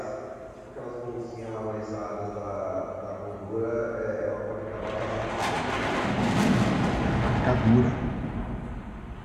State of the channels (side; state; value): both; identical; correlation 1.00